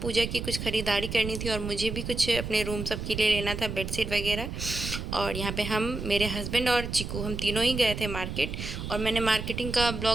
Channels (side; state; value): right; noise; rumble, 6 dB below the sound